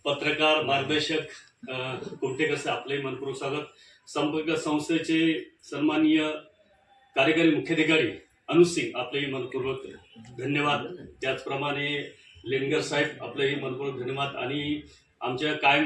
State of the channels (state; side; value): identical; both; correlation 1.00